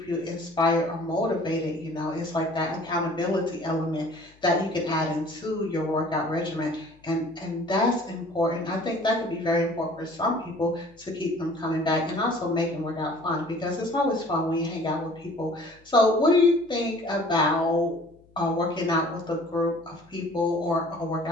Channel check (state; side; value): noise; left; hum, 29 dB below the sound